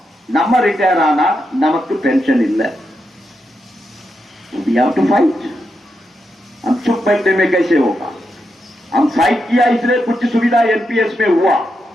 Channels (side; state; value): both; normal; correlation 0.85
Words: நம்ம ரிட்டையர் ஆனா நமக்கு पेंशन இல்ல। We have to fight. हम चुप बैठने में कैसे होगा? हम फाइट किया, इसलिए कुछ सुविधा एनपीएस में हुआ।